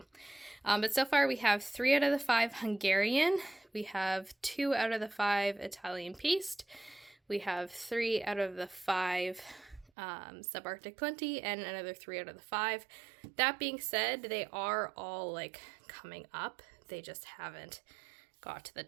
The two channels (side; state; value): left; drops out; at 9.9 s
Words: But so far we have 3 out of the 5 Hungarian, we have 2 out of the 5 Italian paste, we have 3 out of the 5 Subarctic Plenty, and another 3 out of the 5. That being said, they are all like coming up. They just haven't got to the